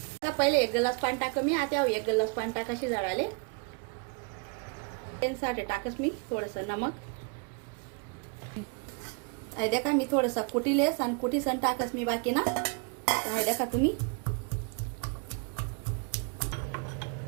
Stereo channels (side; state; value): left; quieter; 34.9 dB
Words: पहिले 1 ग्लास पाणी टाक मी. आता 1 ग्लास पाणी टाकाशी जळाले. त्यासाठी टाकस मी थोडंसं नमक. हाय देखा मी थोडंसं कुटीलेस आणि कुटीसन टाकस मी बाकी ना. हाय देखा तुम्ही.